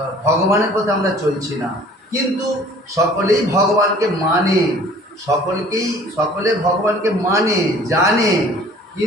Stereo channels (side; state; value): both; normal; correlation 0.51